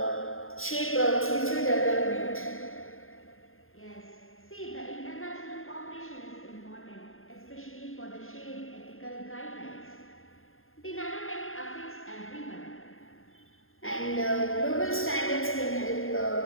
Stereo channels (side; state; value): right; late; 0.61 ms